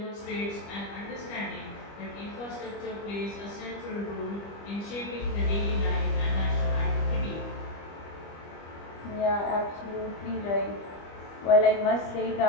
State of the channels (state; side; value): late; right; 25 ms